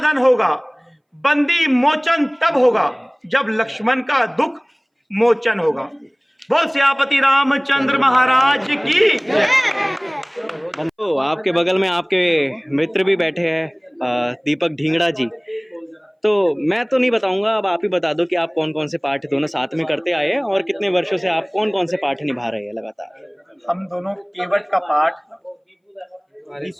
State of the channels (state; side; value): identical; both; correlation 1.00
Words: होगा, बंदी मोचन तब होगा जब लक्ष्मण का दुख मोचन होगा। बोल सियापति रामचंद्र महाराज की। तो आपके बगल में आपके मित्र भी बैठे हैं, दीपक ढींगड़ा जी। तो मैं तो नहीं बताऊंगा, अब आप ही बता दो कि आप कौन कौन से पाठ दोनों साथ में करते आए हैं और कितने वर्षों से आप कौन कौन से पाठ निभा रहे हैं लगातार। हम दोनों केवट का पाठ